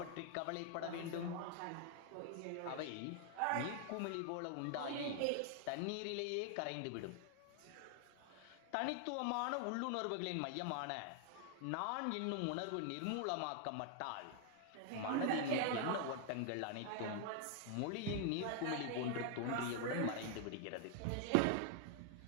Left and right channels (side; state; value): both; different; correlation 0.00